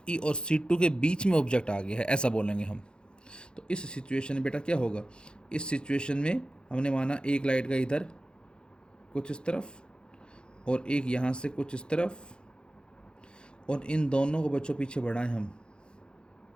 और C2 के बीच में ऑब्जेक्ट आ गया है, ऐसा बोलेंगे हम। तो इस सिचुएशन में बेटा क्या होगा, इस सिचुएशन में हमने माना एक लाइट का इधर कुछ इस तरफ और एक यहाँ से कुछ इस तरफ, और इन दोनों को बच्चों पीछे बढ़ाएं हम।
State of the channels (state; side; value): late; right; 0.050 ms